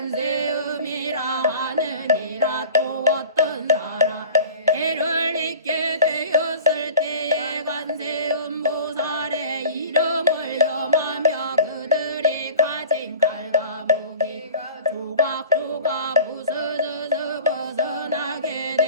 하느니라. 또 어떤 사람 해를 잊게 되었을 때에 관세음보살의 이름을 염하며 그들이 가진 칼과 무기가 조각조각 부서져서 벗어나게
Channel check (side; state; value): both; inverted; correlation -0.41